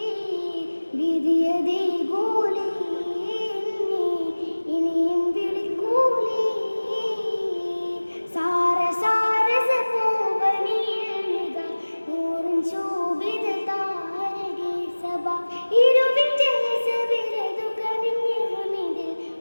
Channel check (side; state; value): both; inverted; correlation -1.00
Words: വിധിയതേ കൂലി ഇനിയും വിളിക്കൂലി സാര സാര സപൂവനിൽനിക നൂറുൻ ശോഭിത താരകേ സബ ഇരുവിന്റെ സബിലതു കനിഞ്ഞ ഹമിദിൽ